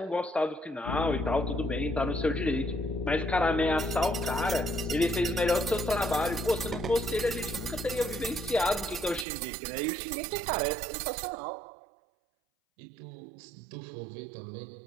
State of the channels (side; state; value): left; drops out; at 9.2 s